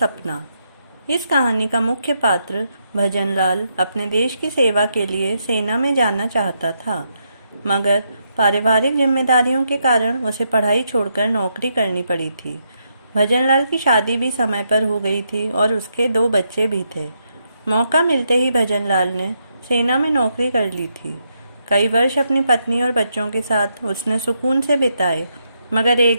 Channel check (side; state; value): both; inverted; correlation -0.80